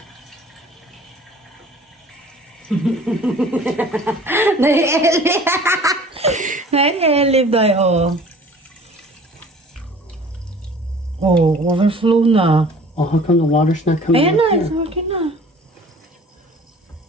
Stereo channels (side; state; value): both; normal; correlation 0.48